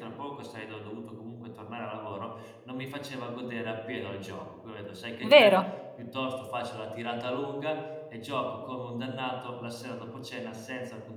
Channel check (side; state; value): both; identical; correlation 1.00